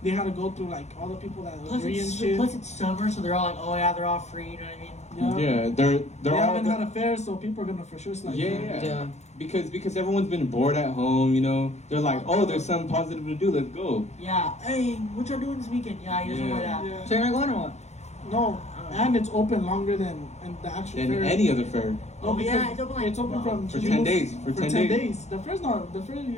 had to go through like all the people that Plus agree and it's, shit. plus it's summer, so they're all like, oh yeah, they're all free. You know what I mean? Yeah. Yeah, they're They all. haven't had a fair, so people are gonna for sure slide. Yeah. Yeah. Because everyone's been bored at home, you know. They're like, oh, there's something positive to do. Let's go. Yeah. Hey, what y'all doing this weekend? Yeah, you just Yeah. want that. Yeah. So you're not going or what? No, and it's open longer than the actual Than fair. any other fair. No, Oh, because yeah, it's open like- from For June 10 days. For 10 days. The fair is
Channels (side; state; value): right; late; 0.32 ms